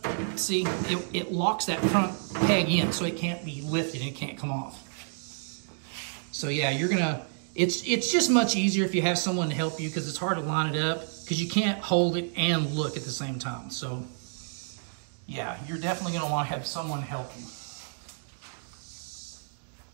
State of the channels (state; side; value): silent; left; digital silence